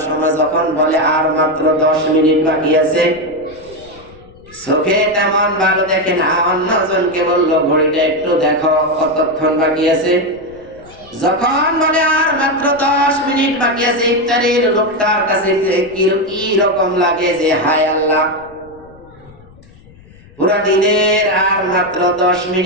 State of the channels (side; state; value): left; noise; rumble, 24 dB below the sound